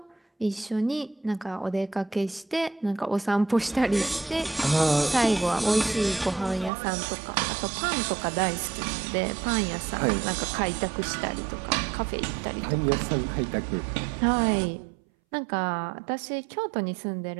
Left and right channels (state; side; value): drops out; left; at 6.7 s